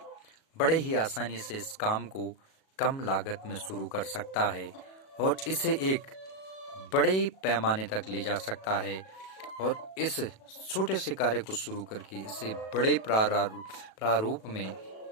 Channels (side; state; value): right; late; 37 ms